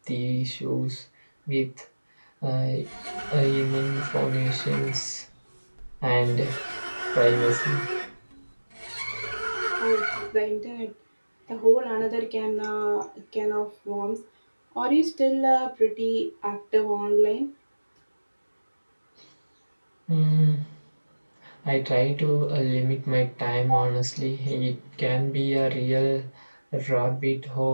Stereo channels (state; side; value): inverted; both; correlation -1.00